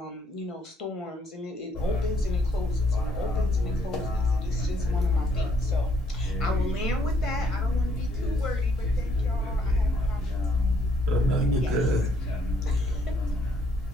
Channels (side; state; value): both; normal; correlation 0.68